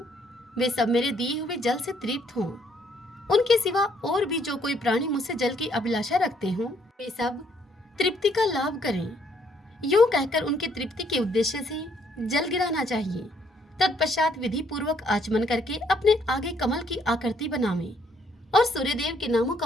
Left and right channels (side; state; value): both; normal; correlation 0.68